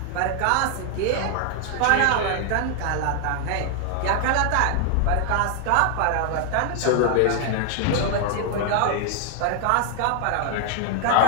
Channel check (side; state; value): both; different; correlation 0.00